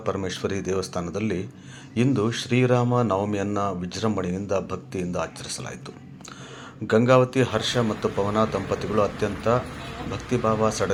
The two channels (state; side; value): identical; both; correlation 1.00